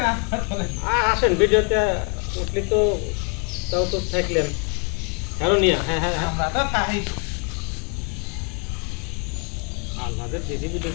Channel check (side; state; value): right; quieter; 34.7 dB